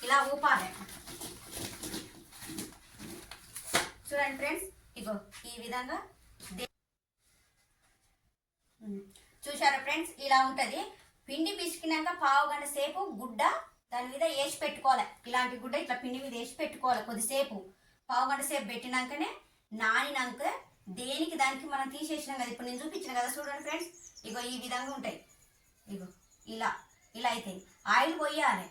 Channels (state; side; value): identical; both; correlation 1.00